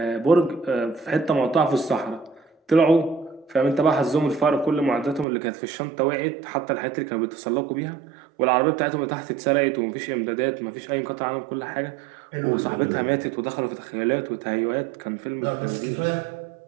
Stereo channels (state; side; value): drops out; left; at 5.2 s